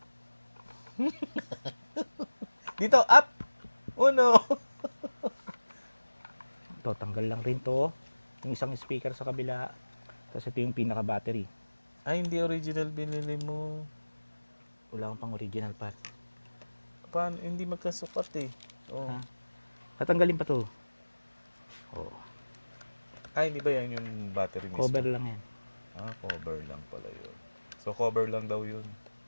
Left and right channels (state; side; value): inverted; both; correlation -1.00